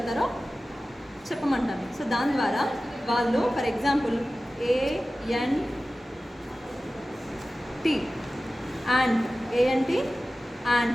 చెప్పమంటాను. సో దాని ద్వారా వాళ్ళు for example ANT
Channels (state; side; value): normal; both; correlation 0.96